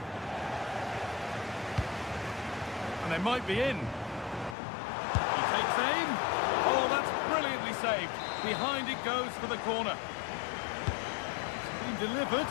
And they might be in. He takes aim. Oh, that's brilliantly saved. Behind it goes for the corner. It's been delivered.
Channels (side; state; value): right; drops out; at 4.5 s